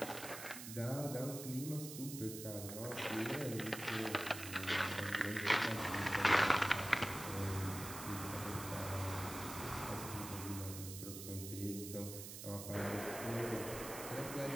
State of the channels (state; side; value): noise; right; hiss, 9 dB below the sound